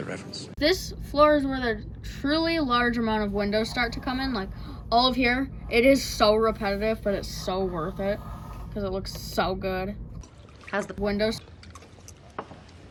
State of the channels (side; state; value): both; identical; correlation 1.00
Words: reference. This floor is where the truly large amount of windows start to come in. Like, all of here, it is so repetitive, but it's so worth it because it looks so good. Has the windows.